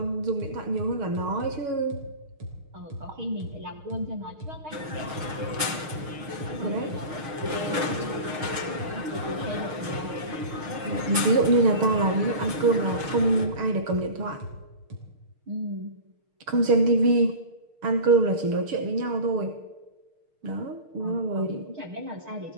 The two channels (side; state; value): left; late; 6.5 ms